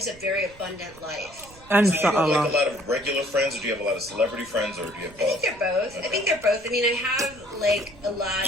a very abundant life. And So do you have like Allah. a lot of regular friends, or do you have a lot of celebrity friends, or do you have both? I think they're both. I mean, I have like a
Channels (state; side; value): noise; right; rumble, 22 dB below the sound